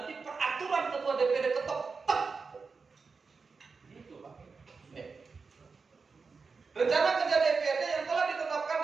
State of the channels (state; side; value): quieter; left; 4.8 dB